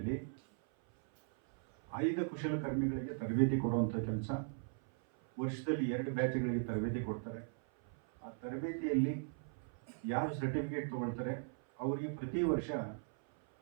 5 ಕುಶಲಕರ್ಮಿಗಳಿಗೆ ತರಬೇತಿ ಕೊಡುವಂಥ ಕೆಲಸ, ವರ್ಷದಲ್ಲಿ 2 ಬ್ಯಾಚ್ಗಳಿಗೆ ತರಬೇತಿ ಕೊಡ್ತಾರೆ. ಆ ತರಬೇತಿಯಲ್ಲಿ ಯಾರು ಸರ್ಟಿಫಿಕೇಟ್ ತೊಗೊಳ್ತಾರೆ ಅವರಿಗೆ ಪ್ರತಿ ವರ್ಷ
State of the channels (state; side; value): silent; left; 52 dB below the other